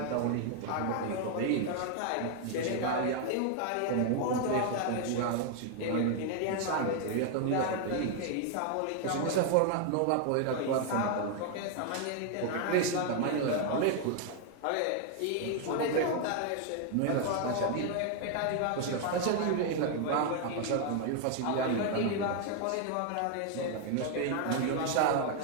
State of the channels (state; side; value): different; both; correlation 0.00